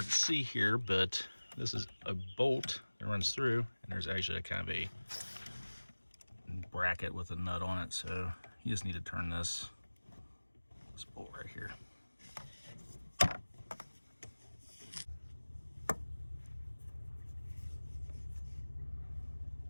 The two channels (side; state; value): both; inverted; correlation -1.00